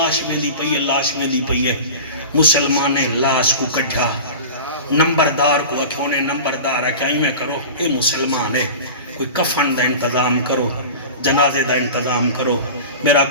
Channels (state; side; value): inverted; both; correlation -0.34